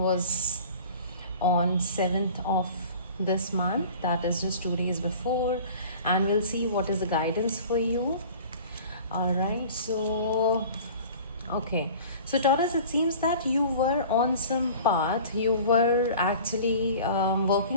on 7th of this month. That is just 2 days before. And we'll see what is the guidance for you. Alright, okay, so Taurus, it seems that you were on some path. You were actually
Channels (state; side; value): inverted; both; correlation -0.43